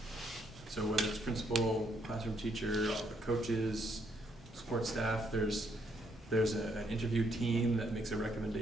So whether it's principal, classroom teacher, all the coaches, support staff, there's an interview team that makes a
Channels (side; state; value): both; normal; correlation 0.73